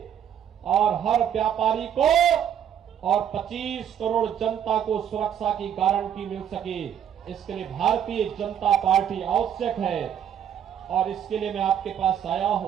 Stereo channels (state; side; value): quieter; left; 9.2 dB